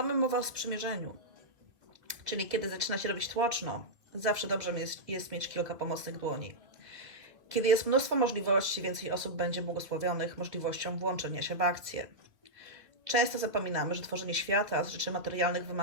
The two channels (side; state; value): left; late; 1.8 ms